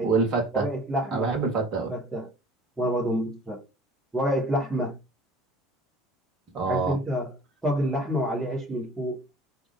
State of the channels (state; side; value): normal; both; correlation 0.47